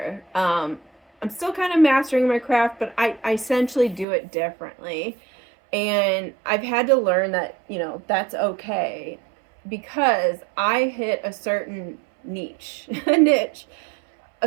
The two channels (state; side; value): drops out; left; at 4.0 s